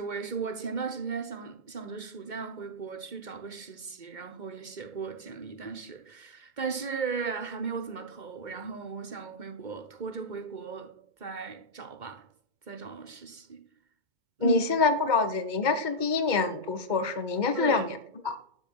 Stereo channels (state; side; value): late; left; 2.2 ms